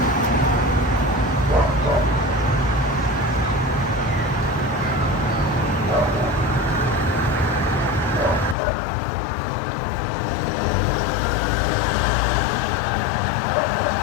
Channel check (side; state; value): right; drops out; at 8.6 s